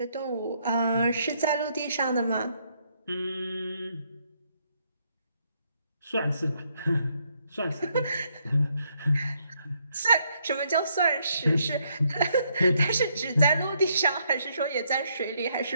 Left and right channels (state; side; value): inverted; both; correlation -0.73